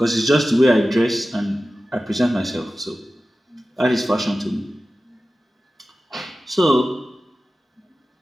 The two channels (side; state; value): both; normal; correlation 0.95